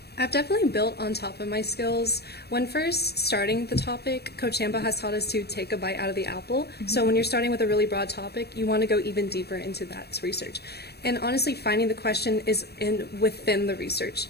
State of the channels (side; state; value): right; late; 0.47 ms